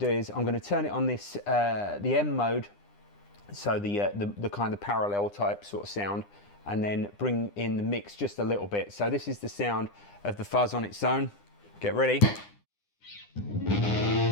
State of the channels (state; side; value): late; right; 9.9 ms